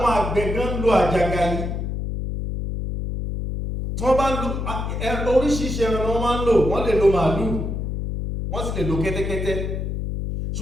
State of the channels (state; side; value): noise; left; hum, 3 dB below the sound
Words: àgbẹ̀ gan lo àjàgà yìí, tí wọ́n bá lo oríṣiríṣi ẹran wọn máa ń lò, wọ́n lè lo màálù, wọ́n sì lè lo kẹ́tẹ́kẹ́tẹ́.